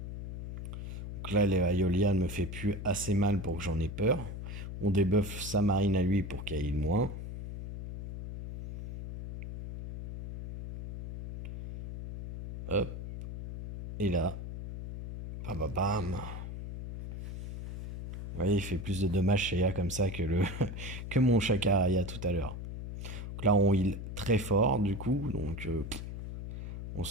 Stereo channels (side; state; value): left; noise; hum, 7 dB below the sound